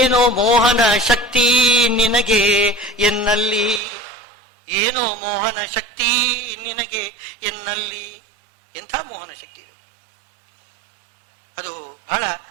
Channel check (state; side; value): drops out; left; at 3.8 s